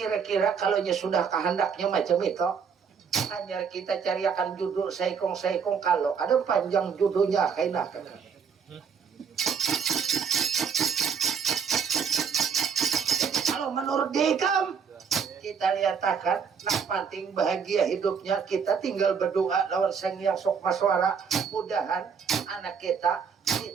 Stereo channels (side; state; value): left; quieter; 6.5 dB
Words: kalau sudah kehendaknya macam itu, hanya kita cariakan judul saikong kalau ada panjang judulnya kaina Kakang. Kalau menurut Dekam, kita lihatkan nak penting bahagia hidupnya, kita tinggal berdoa lawan Sang Hyang Sok Maswara, mudahan anak kita